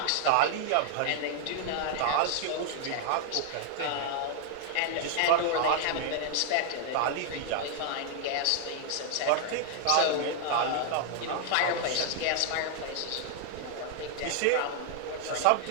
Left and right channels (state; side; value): different; both; correlation 0.00